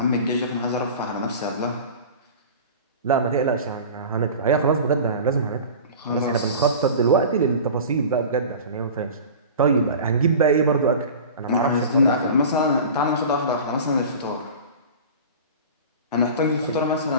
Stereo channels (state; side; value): inverted; both; correlation -0.36